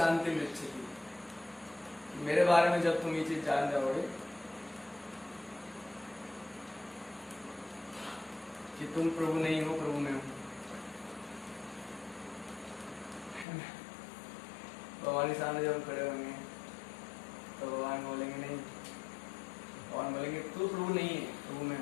मिच्छति। मेरे बारे में जब तुम ये चीज जान जाओगे कि तुम प्रभु नहीं हो, प्रभु में हो, भगवान के सामने जब हम खड़े होंगे तो भगवान बोलेंगे नहीं, भगवान बोलेंगे तू प्रभु नहीं है, प्रभु में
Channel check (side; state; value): right; drops out; at 13.5 s